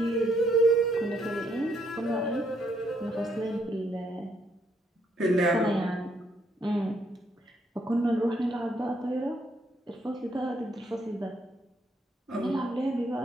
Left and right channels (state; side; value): normal; both; correlation 0.73